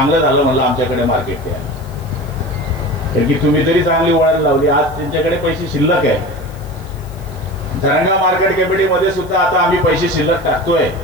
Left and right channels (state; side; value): noise; left; hiss, 26 dB below the sound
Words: झालं म्हणलं आमच्याकडे मार्केट द्या. कारण की तुम्ही तरी चांगली वळण लावली. आज त्यांच्याकडे पैसे शिल्लक आहे. धरणगाव मार्केट कमिटीमध्ये सुद्धा आता आम्ही पैसे शिल्लक टाकतोय.